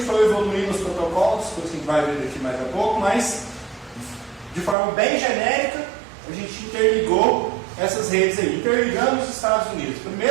foi evoluindo os protocolos, coisa que a gente vai ver daqui mais a pouco, mas de forma bem genérica, a gente interligou essas redes aí, interligando os Estados Unidos.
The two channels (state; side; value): drops out; left; at 4.8 s